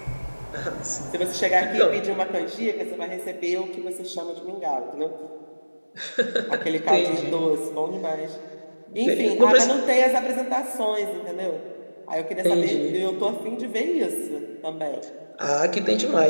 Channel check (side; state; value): both; inverted; correlation -1.00